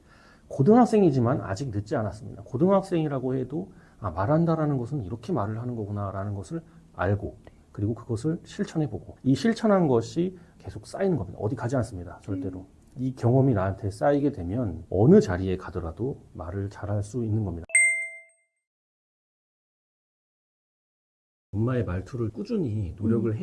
고등학생이지만 아직 늦지 않았습니다. 고등학생이라고 해도 말한다라는 것은 이렇게 말을 하는 거구나라는 것을 알고 그리고 그것을 실천해보고 이 실천한 것이 계속 쌓이는 겁니다. 어디 가지 않습니다. 절대로. 이 경험이 나한테 쌓이게 되면 어느 자리에 가더라도 말을 잘할 수 있는 겁니다. 엄마의 말투를 꾸준히 노력을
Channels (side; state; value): both; identical; correlation 1.00